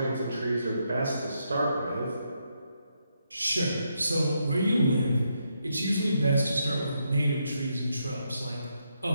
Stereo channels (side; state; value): both; inverted; correlation -0.80